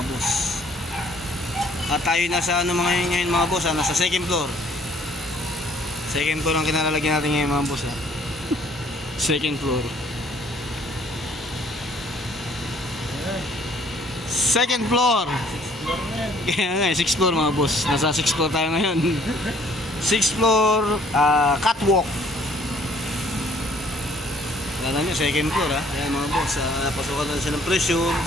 boss. At tayo nasa ano ngayon mga boss ha, nasa second floor. Second floor ang kinalalagyan natin ngayon mga boss ha. Second floor. Second floor. Kaya nga, 6th floor mga boss. Nasa 6th floor tayo ngayon. 6th floor, catwalk. Alam nyo, second floor ha. Ayan mga boss, napasukan natin siya ng pressure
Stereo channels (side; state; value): both; normal; correlation 0.60